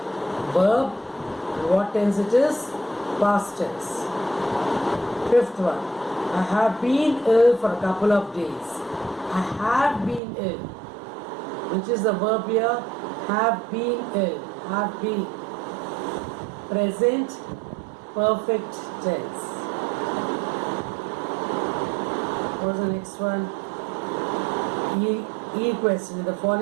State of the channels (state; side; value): drops out; left; at 10.2 s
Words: verb. What tense it is? Past tense. Fifth one. I have been ill for a couple of days. I have been ill. Which is the verb here? Have been ill. Have been. Present perfect tense. What is the next one? E question. In the